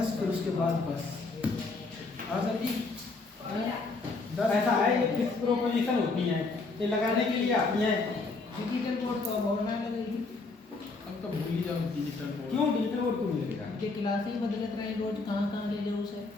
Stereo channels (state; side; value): quieter; right; 3.8 dB